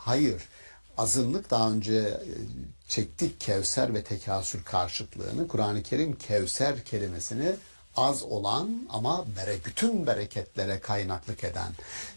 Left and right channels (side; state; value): both; inverted; correlation -1.00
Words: azınlık, daha önce çektik Kevser ve tekasür karşıtlığını. Kur'an-ı Kerim Kevser kelimesini az olan ama bütün bereketlere kaynaklık eden.